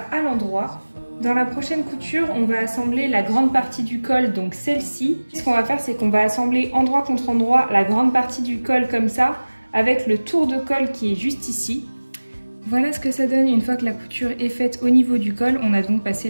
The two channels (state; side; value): inverted; both; correlation -1.00